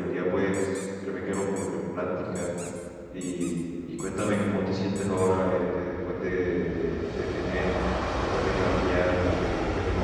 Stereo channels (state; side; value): identical; both; correlation 1.00